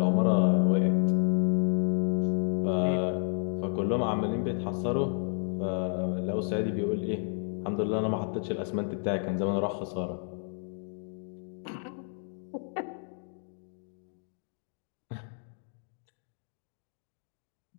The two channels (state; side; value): silent; right; 57 dB below the other